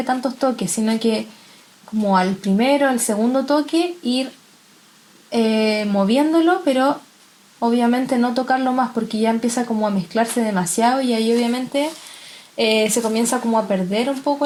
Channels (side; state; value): both; identical; correlation 1.00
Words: tantos toques, sino que como al primero, al segundo toque, ir moviéndolo, pero obviamente no tocarlo más porque ya empieza como a mezclarse demasiado y ahí obviamente se comienza como a perder un